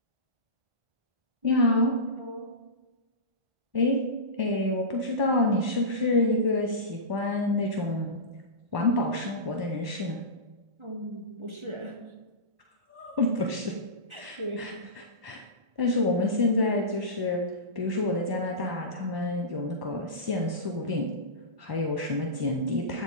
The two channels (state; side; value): late; left; 1.1 ms